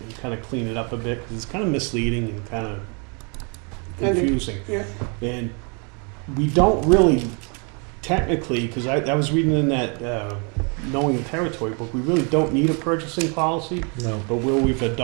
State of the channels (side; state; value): left; quieter; 35.3 dB